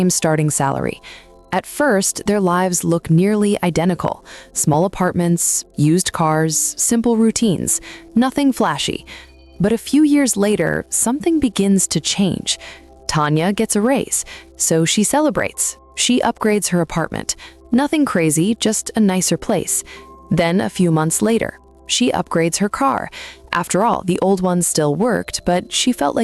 starting salary. At first, their lives look nearly identical. Small apartments, used cars, simple routines, nothing flashy. But a few years later, something begins to change. Tanya gets a raise, so she celebrates. She upgrades her apartment. Nothing crazy, just a nicer place. Then a few months later, she upgrades her car. After all, the old one still worked, but she felt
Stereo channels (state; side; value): identical; both; correlation 1.00